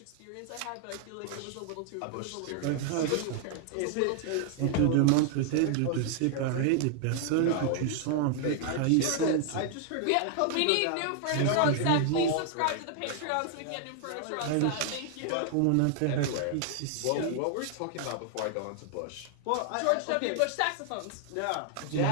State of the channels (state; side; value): different; both; correlation 0.00